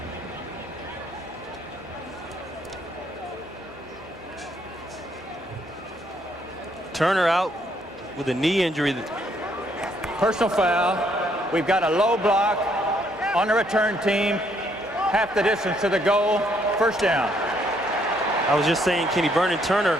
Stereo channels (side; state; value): both; normal; correlation 0.70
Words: Turner out with a knee injury. Personal foul. We've got a low block on the return team. Half the distance to the goal. First down. I was just saying, Kenny, Vernon Turner,